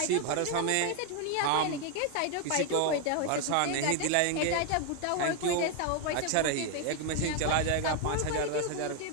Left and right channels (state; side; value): different; both; correlation 0.01